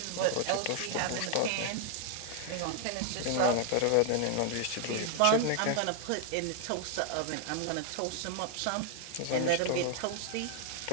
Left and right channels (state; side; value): different; both; correlation 0.00